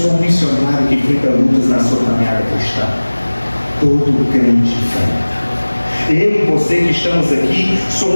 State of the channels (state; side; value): inverted; both; correlation -1.00